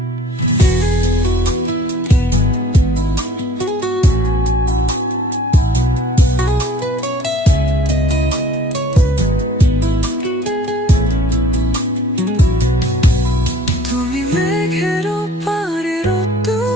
তুমি মেঘের ওপারে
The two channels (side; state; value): both; normal; correlation 0.52